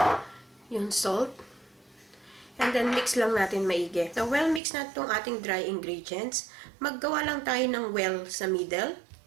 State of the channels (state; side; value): drops out; left; at 4.6 s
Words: yung salt, and then mix lang natin maigi. So, well mix na itong ating dry ingredients. Maggawa lang tayo ng well sa middle.